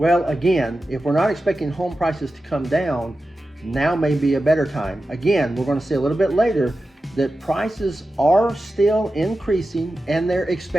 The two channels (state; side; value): normal; both; correlation 0.92